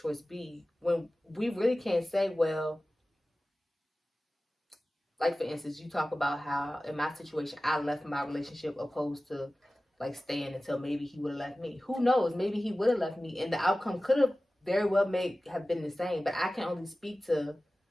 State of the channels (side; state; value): both; normal; correlation 0.96